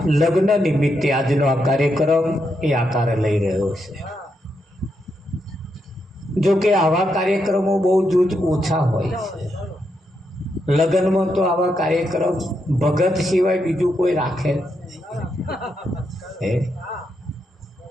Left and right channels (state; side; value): normal; both; correlation 0.81